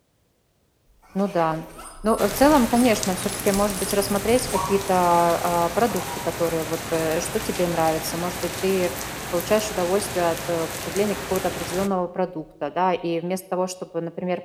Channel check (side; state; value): both; identical; correlation 1.00